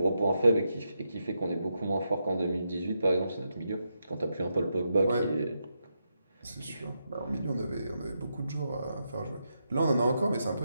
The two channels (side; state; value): both; inverted; correlation -0.84